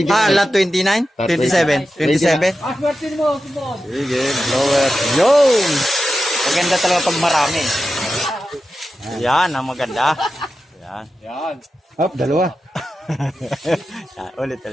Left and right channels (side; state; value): both; normal; correlation 0.91